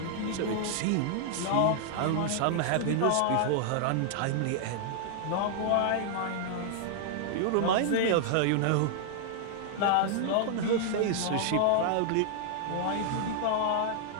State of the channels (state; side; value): different; both; correlation 0.00